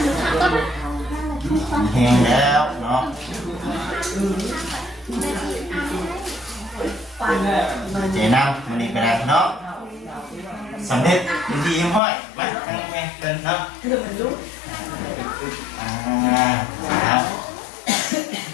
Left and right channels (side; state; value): right; drops out; at 12.0 s